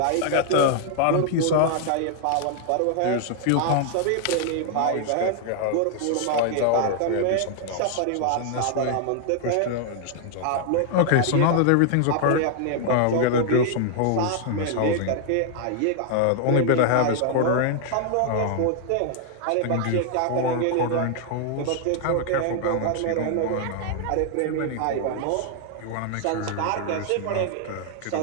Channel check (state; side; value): different; both; correlation 0.00